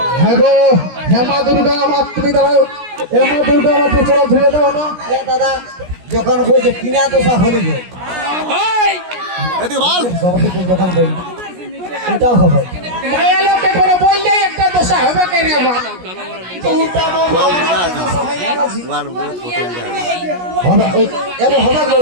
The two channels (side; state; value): left; late; 17 ms